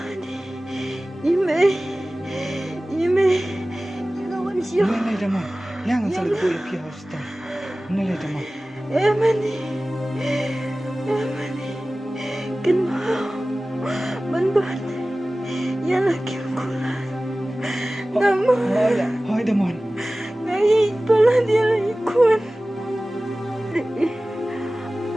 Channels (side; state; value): both; normal; correlation 0.97